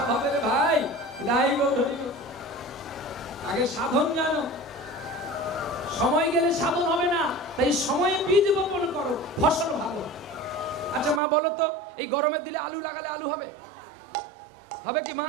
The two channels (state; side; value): drops out; left; at 11.2 s